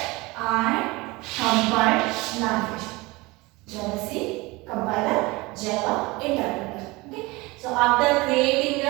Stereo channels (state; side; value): quieter; left; 23.1 dB